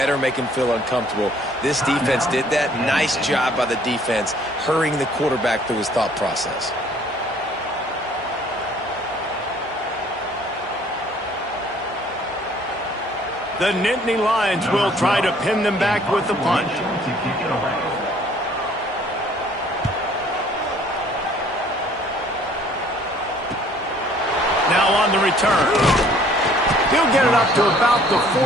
make him feel uncomfortable. This defense did that. Nice job by the defense, hurrying the quarterback through his thought process. The Nittany Lions will try to pin them back with the punt. Now on the return. He'll get it up to about the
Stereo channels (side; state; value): both; normal; correlation 0.58